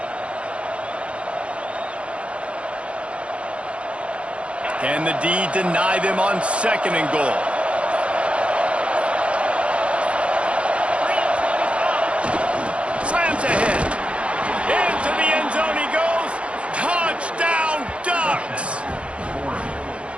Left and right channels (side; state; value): left; late; 0.060 ms